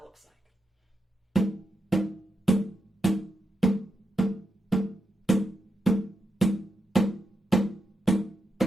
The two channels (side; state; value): both; normal; correlation 0.86